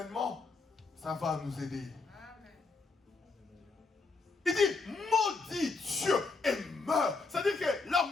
ça va nous aider. Il dit, maudit Dieu et meurt. C'est-à-dire que la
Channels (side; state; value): right; quieter; 4.0 dB